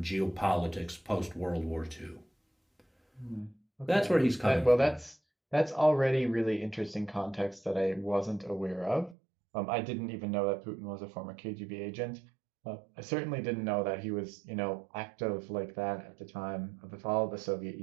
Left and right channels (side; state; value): left; drops out; at 9.2 s